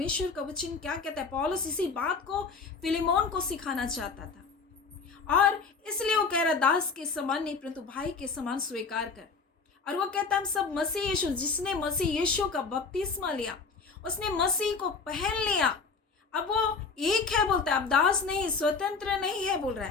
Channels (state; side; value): quieter; right; 4.8 dB